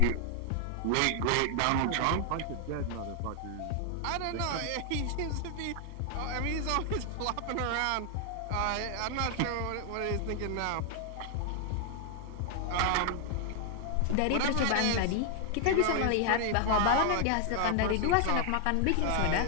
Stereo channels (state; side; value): different; both; correlation 0.00